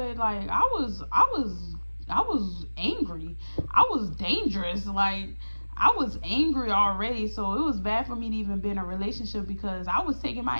like I was angry. I was dangerous. Like I was angry already, so it was bad for me to even be in a relationship because I was taking my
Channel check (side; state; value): both; inverted; correlation -1.00